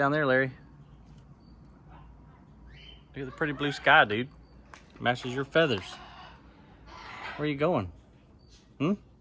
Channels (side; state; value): both; identical; correlation 1.00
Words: there, Larry. Look at the pretty blue sky, dude. Matches your feathers. Where are you going? You